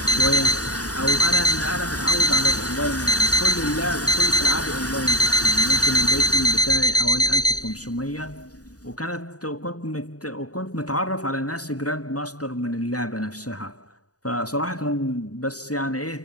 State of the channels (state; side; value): late; right; 0.67 ms